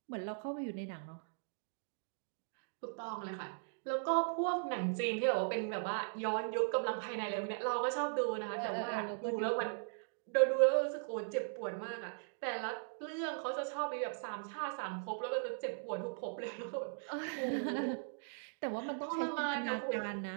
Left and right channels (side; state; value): left; silent; digital silence